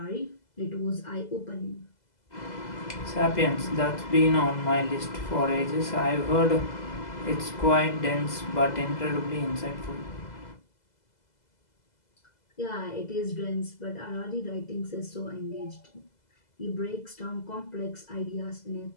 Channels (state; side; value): late; right; 2.0 ms